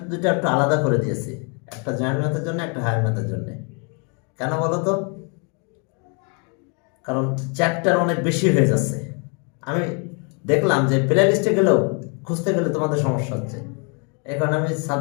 দুটো একটু আলাদা করে দিয়েছি, একটা জয়েন্ট ম্যাথের জন্য একটা হায়ার ম্যাথের জন্য। কেন বলো তো? কারণ চ্যাপ্টার অনেক বেশি হয়ে যাচ্ছে, আমি দেখলাম যে প্লে লিস্টে গেলেও খুঁজতে গেলে তোমাদের সমস্যা হচ্ছে, এই কারণে আমি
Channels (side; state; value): right; quieter; 36.4 dB